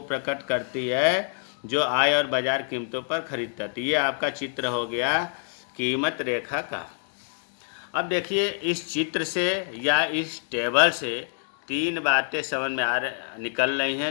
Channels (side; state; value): right; silent; digital silence